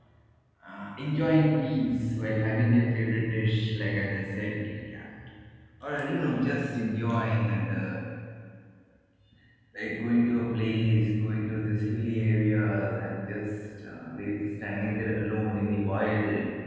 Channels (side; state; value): both; identical; correlation 1.00